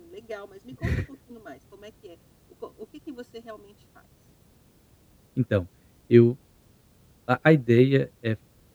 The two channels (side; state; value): both; identical; correlation 1.00